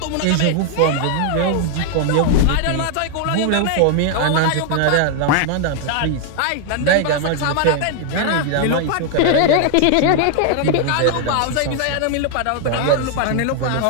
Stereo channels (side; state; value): both; different; correlation 0.00